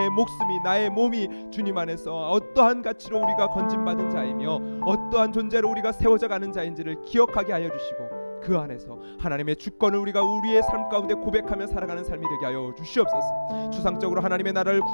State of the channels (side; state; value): both; inverted; correlation -1.00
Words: 목숨이, 나의 몸이 주님 안에서 어떠한 가치로 우리가 건진받은 자이며 어떠한 존재로 우리가 세워져 가는 자인지를 기억하게 하여 주시고, 그 안에서 하나님의 주권을 우리가 우리의 삶 가운데 고백하며 살아가는 삶이 되게 하여 주시옵소서. 추상적으로 하나님의 나라를